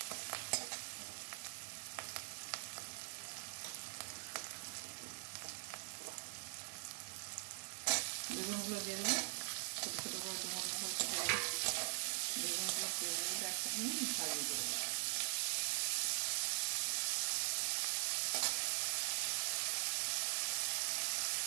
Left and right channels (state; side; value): silent; left; digital silence